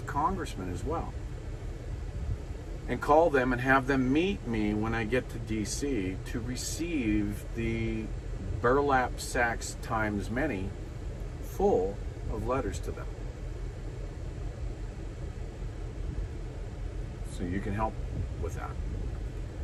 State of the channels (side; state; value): both; identical; correlation 1.00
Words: congressmen as well, and call them and have them meet me when I get to DC to receive the burlap sacks times many full of letters to them. So you can help with that.